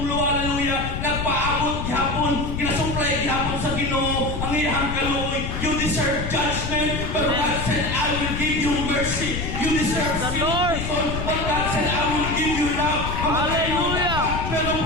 hallelujah, nagpaabot gihapon, ginasuplay gihapon sa Ginoo, ang iyang kaluoy. You deserve judgment, but God said, I will give you mercy. You deserve The Lord. but God said, I will give you love. Hallelujah. Pero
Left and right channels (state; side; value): noise; left; rumble, 4 dB below the sound